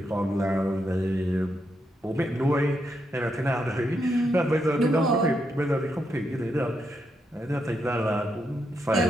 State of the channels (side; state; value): both; normal; correlation 0.81